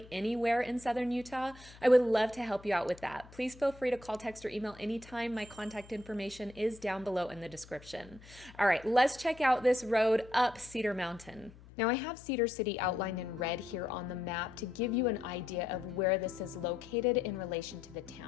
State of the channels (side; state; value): left; noise; hum, 21 dB below the sound